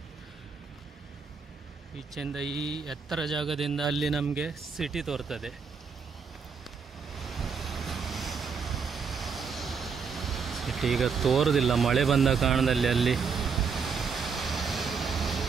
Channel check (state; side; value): quieter; left; 5.7 dB